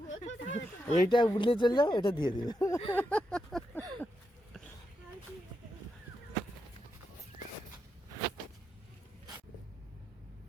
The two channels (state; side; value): normal; both; correlation 0.84